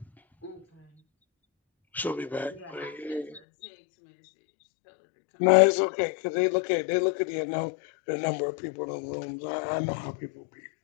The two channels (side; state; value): right; drops out; at 3.4 s